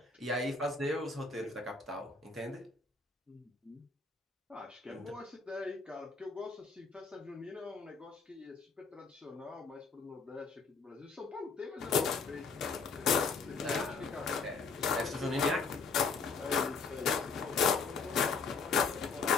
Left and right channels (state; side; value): quieter; right; 4.7 dB